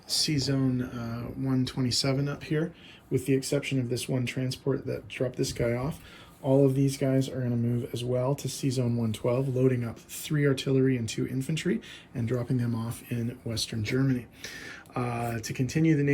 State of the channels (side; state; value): both; identical; correlation 1.00